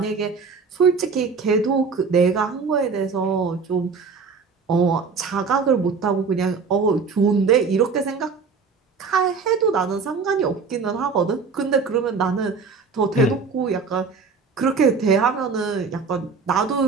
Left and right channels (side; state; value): left; quieter; 5.0 dB